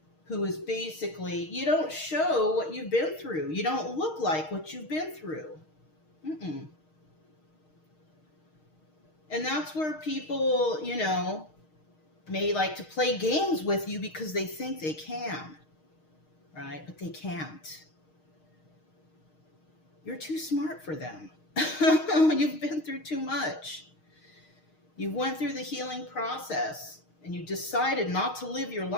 who is basically, you don't show what you've been through. You don't look like what you've been through. And that's where people, you know, may like to play games with you because they think they can, right? But they can't. You're too smart for them. You've been through too much. You went through the healing process and you decided not to live your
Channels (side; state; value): right; late; 6.5 ms